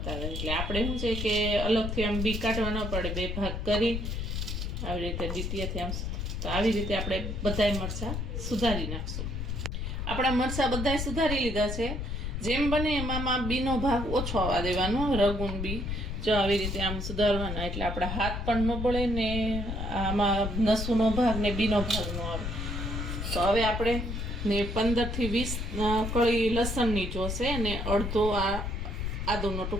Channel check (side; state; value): left; noise; rumble, 3 dB below the sound